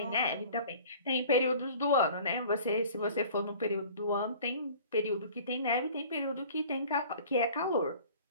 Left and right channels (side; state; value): both; inverted; correlation -0.46